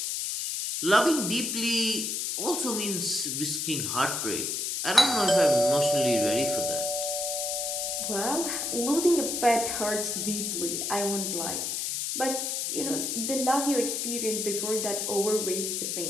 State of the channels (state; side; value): noise; left; hiss, 1 dB below the sound